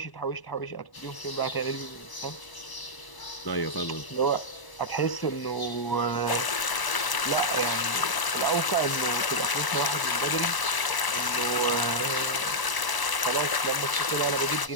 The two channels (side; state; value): right; late; 1.0 ms